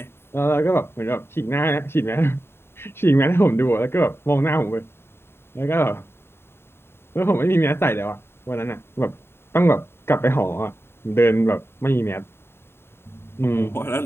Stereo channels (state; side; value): late; right; 0.11 ms